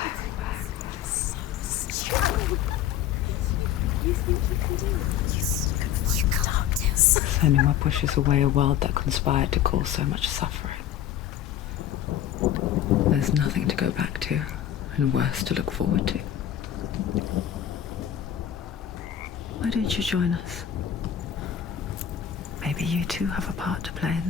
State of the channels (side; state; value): right; quieter; 10.5 dB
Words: You can't do it. Senua pushes away a world that conspired to cause so much suffering. There's nothing to go back to, and worse to look forward to. Why don't you join us? Maybe you too have a part to play in